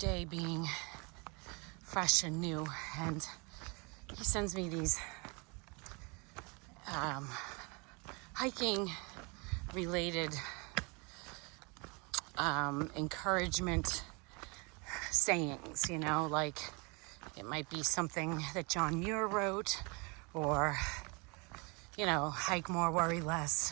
being fresh and new, and he sends me these hiking related encouragement sayings, you know, like it might be something that John Muir wrote, or you know, hike more, worry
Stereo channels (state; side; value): quieter; left; 30.3 dB